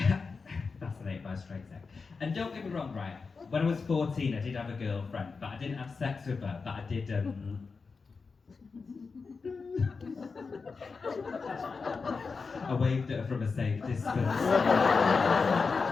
fascinated by straight sex. And don't get me wrong, right? When I was 14, I did have a girlfriend, but I didn't have sex with her, but I did, I waved at her from a safe distance. I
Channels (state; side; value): quieter; right; 4.7 dB